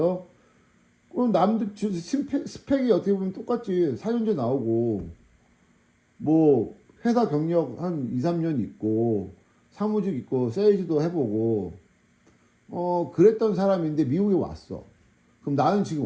그럼 남들 스펙이 어떻게 보면 똑같지. 4년제 나오고 뭐 회사 경력 한 2, 3년 있고 사무직 있고 세일즈도 해보고 그랬던 사람인데 미국에 왔어. 그럼 나는 지금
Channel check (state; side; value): identical; both; correlation 1.00